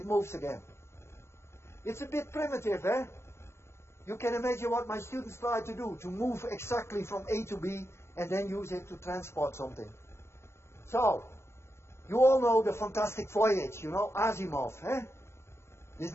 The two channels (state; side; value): late; right; 0.13 ms